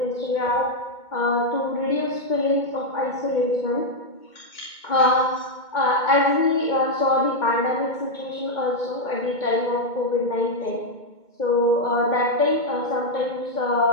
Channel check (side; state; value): right; late; 2.2 ms